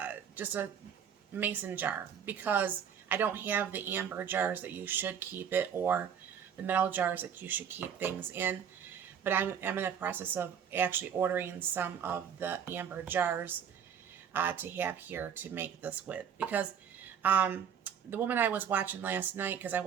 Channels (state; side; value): quieter; left; 8.1 dB